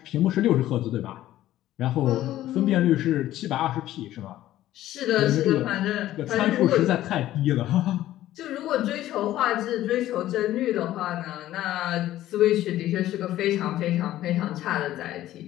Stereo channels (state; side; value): quieter; right; 14.0 dB